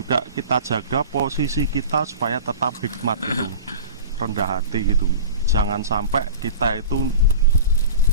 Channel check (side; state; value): both; inverted; correlation -0.36